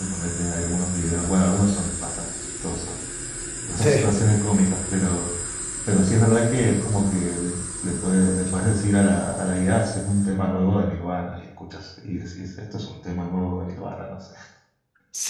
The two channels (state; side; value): identical; both; correlation 1.00